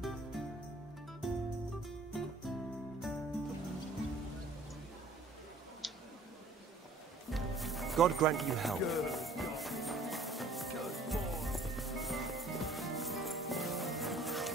God grant you help.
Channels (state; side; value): quieter; left; 3.1 dB